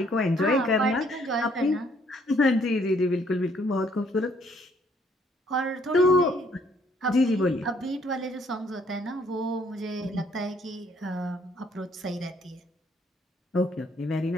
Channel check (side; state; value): both; normal; correlation 0.65